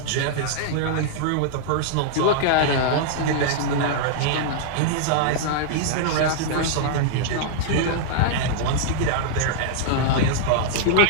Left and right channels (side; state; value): both; different; correlation -0.01